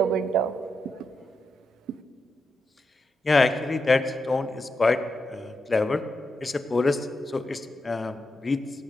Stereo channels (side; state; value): both; normal; correlation 0.86